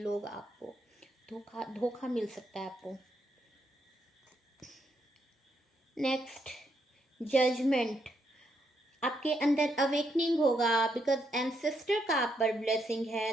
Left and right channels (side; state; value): both; normal; correlation 0.77